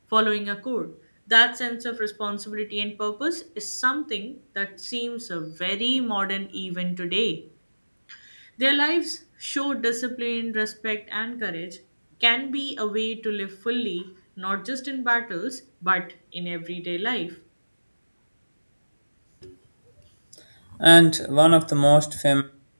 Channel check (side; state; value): both; inverted; correlation -1.00